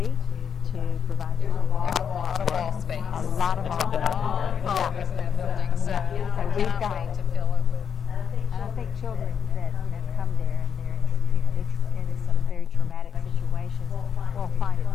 to provide you a lot of wall space. A lot of office in that building, so we've got wait to fill it with. And I think children that come there and they're in some very traumatic situations will find it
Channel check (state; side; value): quieter; right; 7.4 dB